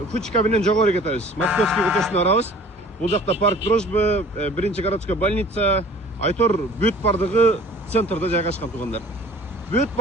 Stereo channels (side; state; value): both; normal; correlation 0.48